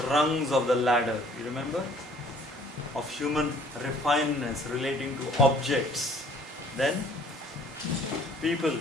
rungs of the ladder, you remember? Of human refinedness relating to objects. Then people,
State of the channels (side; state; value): both; normal; correlation 0.56